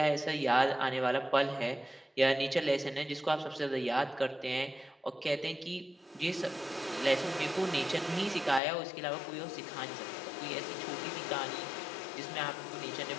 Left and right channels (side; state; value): right; drops out; at 8.6 s